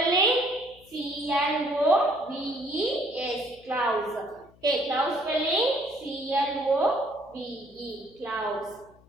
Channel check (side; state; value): left; noise; hum, 27 dB below the sound